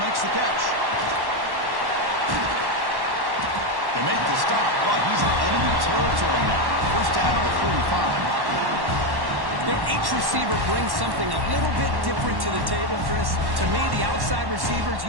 the catch. They make the stop, but he's in enemy territory now. 1st down at the 45. You know, each receiver brings something a little bit different to the table, Chris. To me, the outside receivers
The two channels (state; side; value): late; left; 1.1 ms